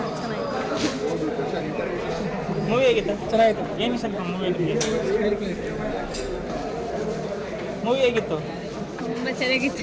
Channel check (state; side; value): identical; both; correlation 1.00